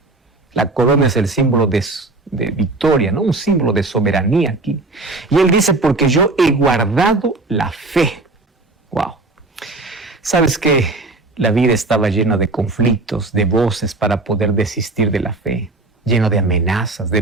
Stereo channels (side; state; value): left; quieter; 3.1 dB